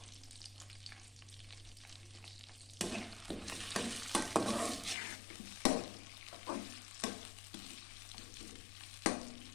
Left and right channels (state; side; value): drops out; right; at 5.0 s